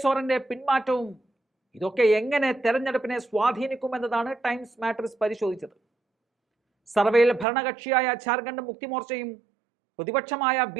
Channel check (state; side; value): drops out; left; at 7.5 s